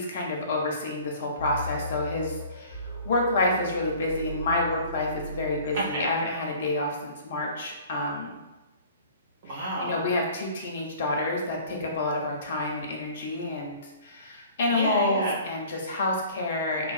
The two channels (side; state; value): both; inverted; correlation -0.48